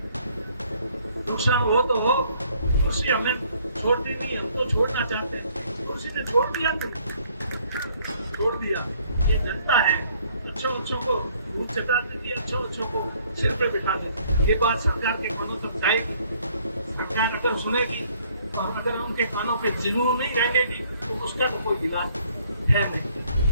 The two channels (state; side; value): inverted; both; correlation -0.62